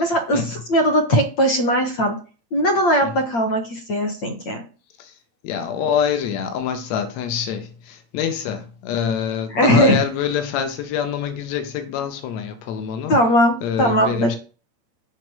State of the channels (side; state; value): right; late; 8.7 ms